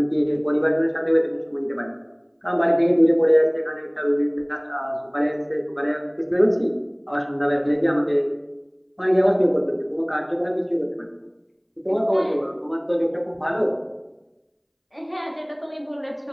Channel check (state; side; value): identical; both; correlation 1.00